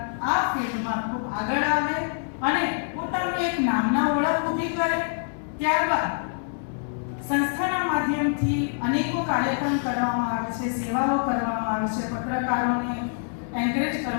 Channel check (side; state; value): right; silent; 56 dB below the other